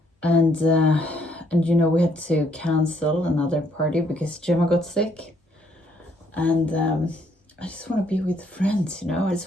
And you know, we had to cancel another party because Gemma got sick. And I just want to be with friends, you know. I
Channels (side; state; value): both; normal; correlation 0.69